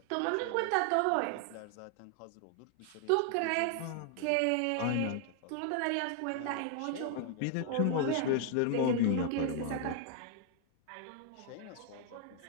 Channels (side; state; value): both; different; correlation 0.00